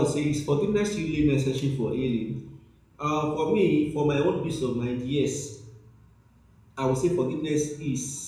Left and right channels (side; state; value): both; identical; correlation 1.00